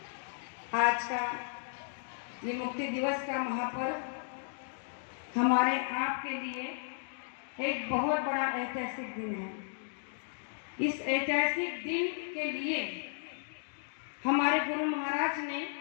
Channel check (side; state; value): right; silent; digital silence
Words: आज का ये मुक्ति दिवस का महापर्व हमारे आपके लिए एक बहुत बड़ा ऐतिहासिक दिन है। इस ऐतिहासिक दिन के लिए हमारे गुरु महाराज ने